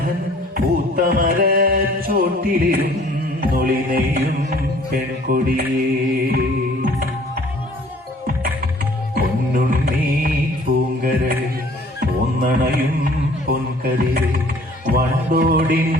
പൂത്തമര ചോട്ടിലിരുന്നൊളിനെയും പെൺകൊടിയേ. പൊന്നുണ്ണി പൂങ്കരളെ പോന്നണയും പൊൻകതിരെ വണ്ടോടിൻ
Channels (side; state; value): both; normal; correlation 0.54